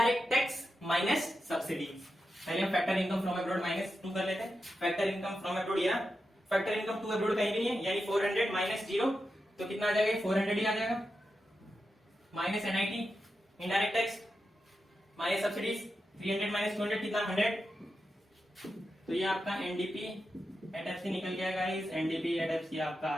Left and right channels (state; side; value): normal; both; correlation 0.89